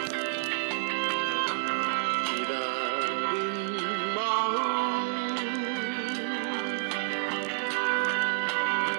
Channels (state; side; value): silent; left; digital silence